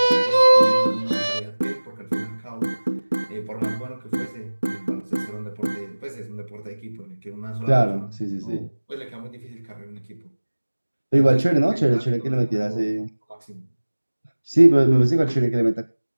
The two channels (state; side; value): inverted; both; correlation -1.00